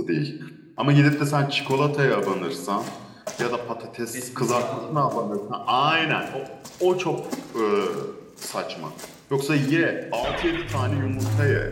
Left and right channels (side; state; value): both; identical; correlation 1.00